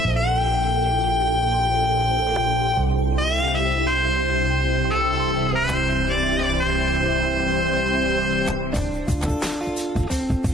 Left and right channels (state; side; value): normal; both; correlation 0.64